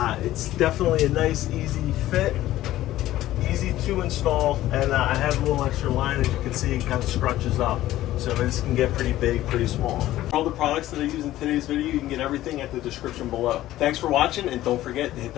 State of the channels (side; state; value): right; quieter; 14.7 dB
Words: It's definitely a nice, easy fit. Easy to install, and I have a little extra line. As you can see, it kind of scrunches up, so this can get pretty big, pretty small. For all the products that I use in today's video, you can get everything at the description below. Thanks for watching, and don't forget to hit